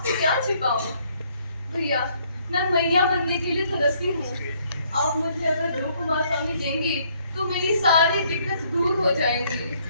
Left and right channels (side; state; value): both; inverted; correlation -0.67